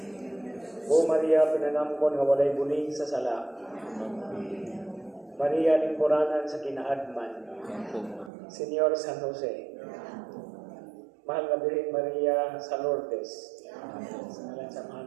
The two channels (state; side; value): drops out; left; at 8.3 s